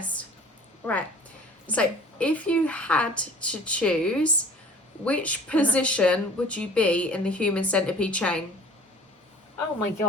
Right. So, if you had to choose, which position would you be in the human centipede chain? Oh my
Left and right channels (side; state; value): both; normal; correlation 0.47